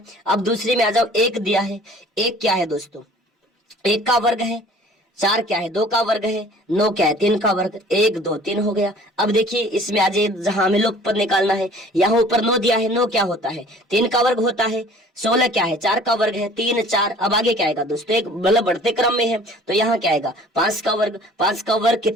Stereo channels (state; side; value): normal; both; correlation 0.50